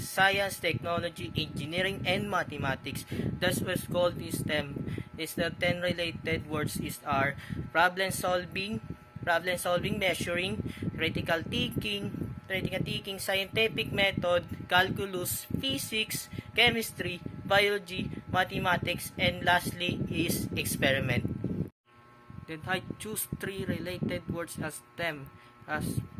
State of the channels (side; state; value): both; identical; correlation 1.00